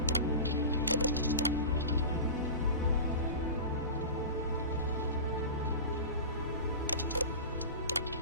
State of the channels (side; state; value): both; inverted; correlation -0.31